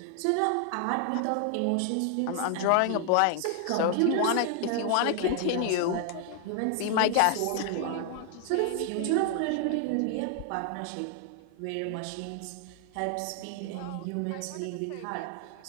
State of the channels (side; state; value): both; different; correlation 0.00